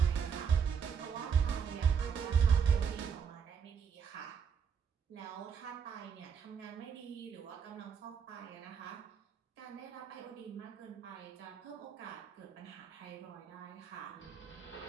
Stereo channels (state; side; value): quieter; left; 6.9 dB